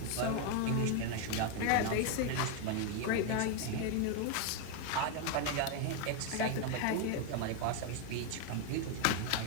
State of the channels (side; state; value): both; different; correlation 0.01